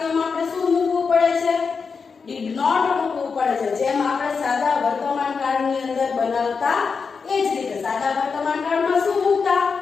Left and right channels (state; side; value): quieter; right; 5.3 dB